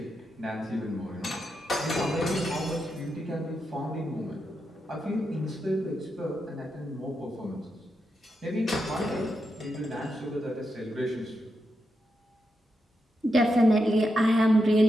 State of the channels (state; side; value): normal; both; correlation 0.85